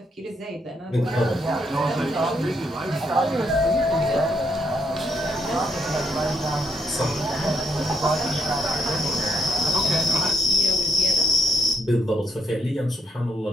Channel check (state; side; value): normal; both; correlation 0.74